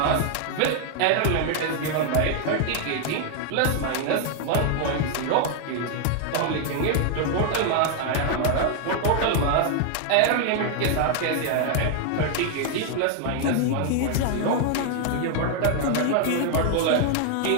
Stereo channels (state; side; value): different; both; correlation 0.00